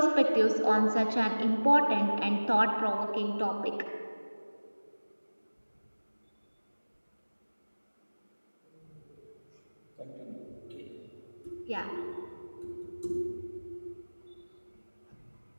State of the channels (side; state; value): both; inverted; correlation -1.00